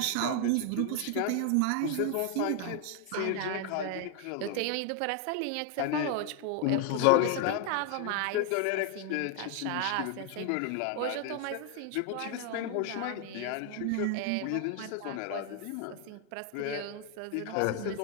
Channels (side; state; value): both; different; correlation 0.00